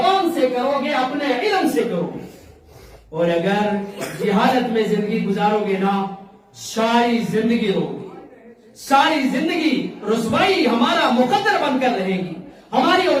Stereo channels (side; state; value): both; identical; correlation 1.00